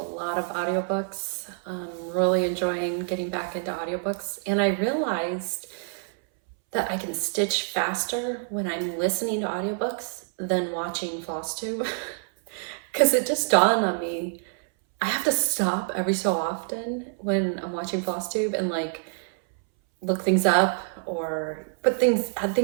of audiobooks. Really enjoying getting back into audiobooks. And I realized that I can stitch faster when I'm listening to audiobooks than watching FlossTube. Because it just dawned on me, I have to stop every so often when I'm watching FlossTube and like look things up or add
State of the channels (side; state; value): left; silent; 61 dB below the other